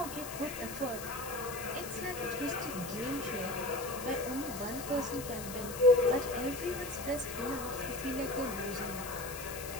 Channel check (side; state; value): left; noise; hiss, 10 dB below the sound